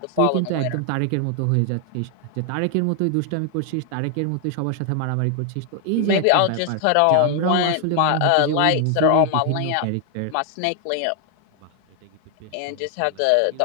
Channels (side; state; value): both; different; correlation 0.00